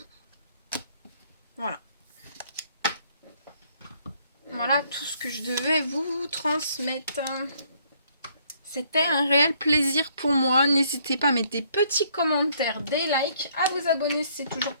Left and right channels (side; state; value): both; inverted; correlation -0.66